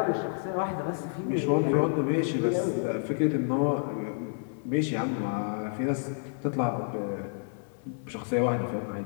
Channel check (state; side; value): silent; right; 58 dB below the other